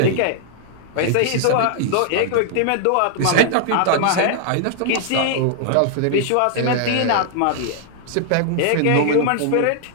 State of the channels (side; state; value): both; different; correlation -0.01